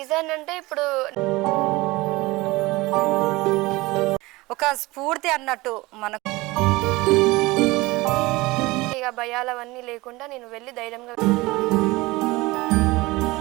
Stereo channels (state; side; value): quieter; left; 21.4 dB